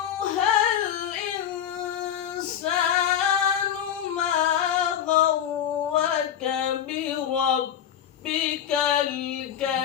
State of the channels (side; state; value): right; quieter; 9.6 dB